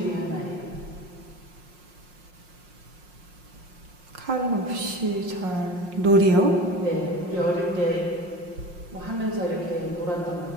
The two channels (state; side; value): late; left; 5.6 ms